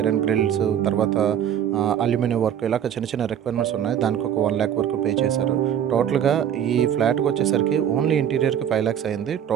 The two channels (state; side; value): quieter; left; 9.5 dB